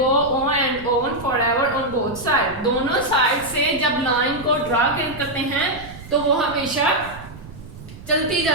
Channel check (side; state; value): right; noise; rumble, 16 dB below the sound